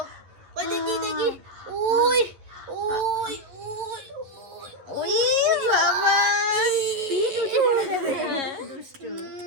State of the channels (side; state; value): left; late; 11 ms